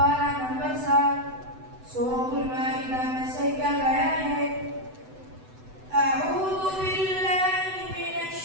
number 7 Surah Al-Ma'idah Masaikan ayat أعوذ بالله من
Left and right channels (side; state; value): left; late; 7.9 ms